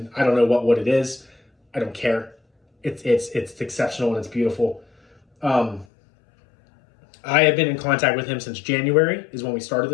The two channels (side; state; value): right; drops out; at 5.9 s